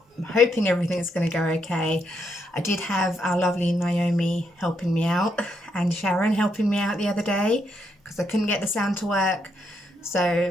I'm hoping everything's going to go okay. I did have our lovely Naomi helping me out and Sharon helping me out the other day because I couldn't get the sound to work. So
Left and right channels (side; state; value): both; normal; correlation 0.78